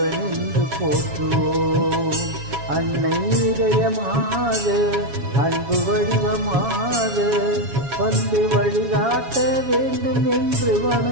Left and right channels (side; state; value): left; late; 7.2 ms